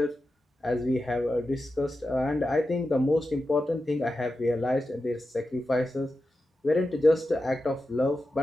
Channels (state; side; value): normal; both; correlation 0.91